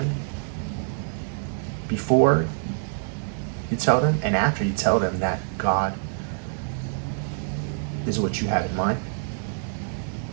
before you tell them and after you tell them that God is what you have in mind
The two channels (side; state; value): left; silent; 59 dB below the other